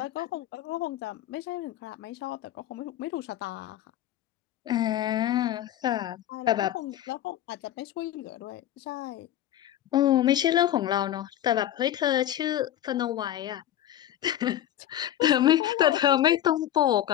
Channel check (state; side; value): quieter; right; 12.2 dB